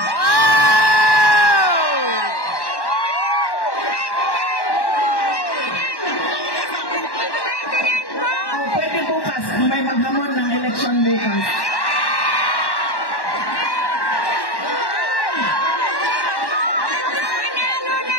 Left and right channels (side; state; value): right; late; 1.1 ms